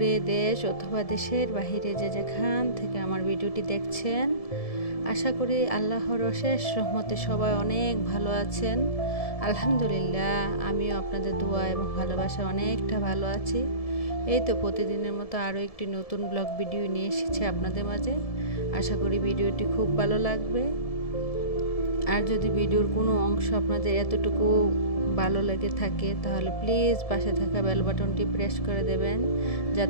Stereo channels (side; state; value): right; late; 1.7 ms